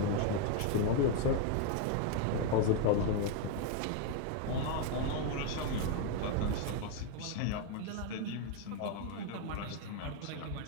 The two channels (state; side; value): different; both; correlation 0.01